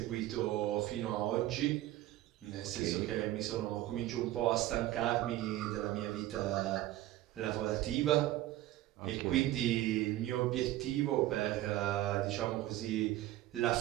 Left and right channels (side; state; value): left; quieter; 15.2 dB